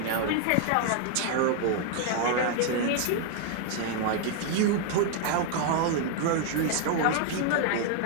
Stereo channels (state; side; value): different; both; correlation 0.00